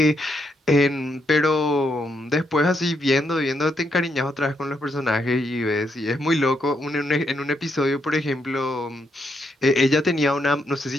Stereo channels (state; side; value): normal; both; correlation 0.78